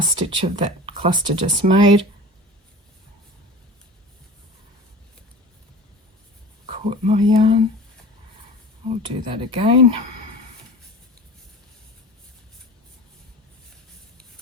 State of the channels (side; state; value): both; normal; correlation 0.37